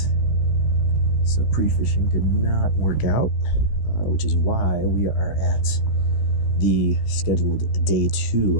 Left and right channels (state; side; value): late; right; 15 ms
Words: So pre-fishing did not work out, which is why we are at the scheduled day